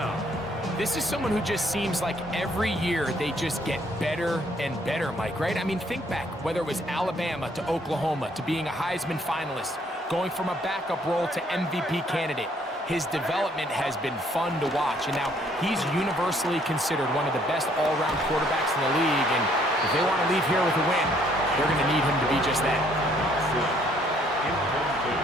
This is someone who just seems like every year they just get better and better, Mike, right? I mean, think back, whether it was Alabama to Oklahoma to being a Heisman finalist, going from a backup role to MVP candidate. His development has been fun to watch, and now he's universally considered one of the best all-around quarterbacks in the league, and if they want to leave here with a win, they're going to need him to be just that.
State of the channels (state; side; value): normal; both; correlation 0.65